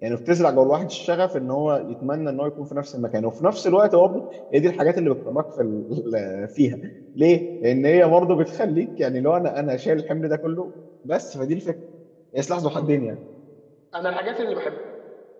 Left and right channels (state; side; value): identical; both; correlation 1.00